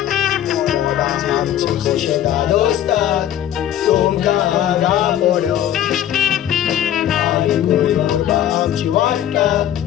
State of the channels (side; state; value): right; quieter; 11.3 dB